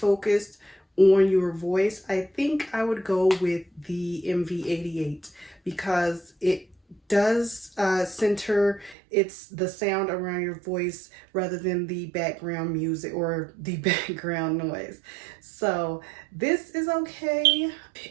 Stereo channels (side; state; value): left; drops out; at 9.0 s